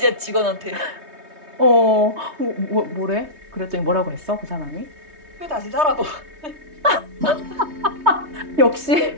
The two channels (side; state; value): left; late; 3.2 ms